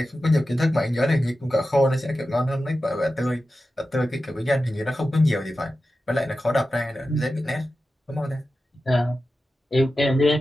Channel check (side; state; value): both; normal; correlation 0.93